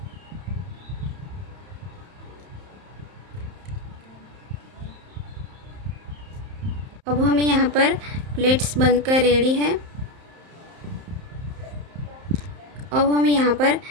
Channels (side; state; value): left; late; 31 ms